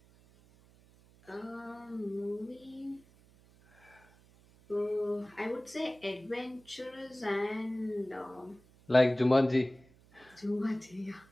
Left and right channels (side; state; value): right; noise; hum, 27 dB below the sound